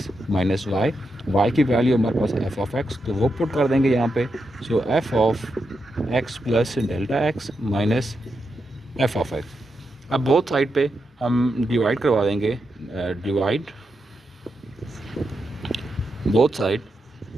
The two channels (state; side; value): normal; both; correlation 0.85